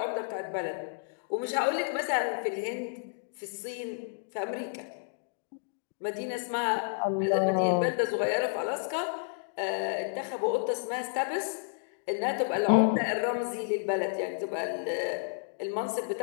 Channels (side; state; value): right; silent; digital silence